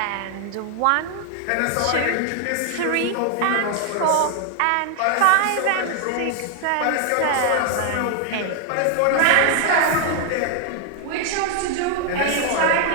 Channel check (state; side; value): different; both; correlation 0.00